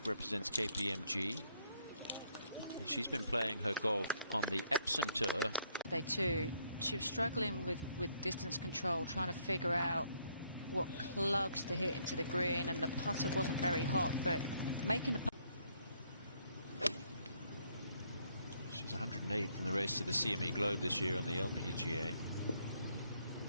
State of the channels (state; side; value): inverted; both; correlation -0.70